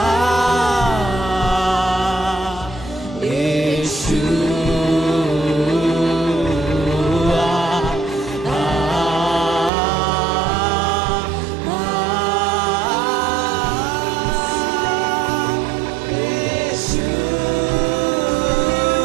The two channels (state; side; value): drops out; left; at 9.7 s